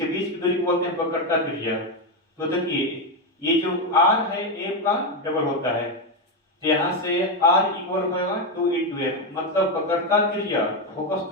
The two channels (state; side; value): normal; both; correlation 0.08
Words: बीच की दूरी को बोलते हैं वक्रता त्रिज्या। तो देखिए, ये जो r है f का डबल होता है, तो यहां से r इक्वल होगा 2 × f, मतलब वक्रता त्रिज्या फोकस